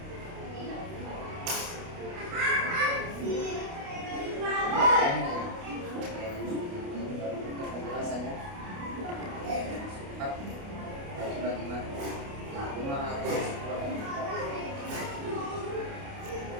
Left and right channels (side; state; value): left; late; 29 ms